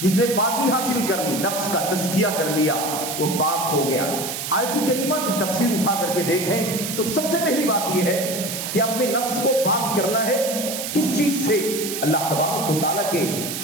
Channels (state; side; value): noise; right; hiss, 5 dB below the sound